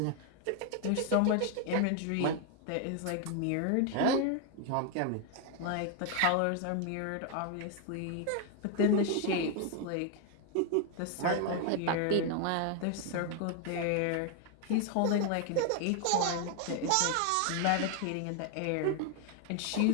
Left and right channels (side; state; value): both; different; correlation 0.01